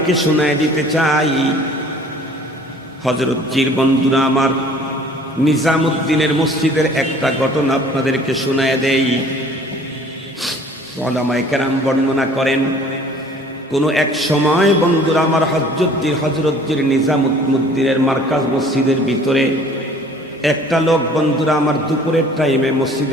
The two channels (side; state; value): both; normal; correlation 0.51